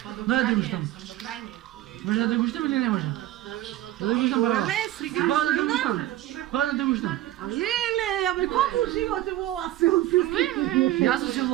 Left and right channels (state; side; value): quieter; left; 14.6 dB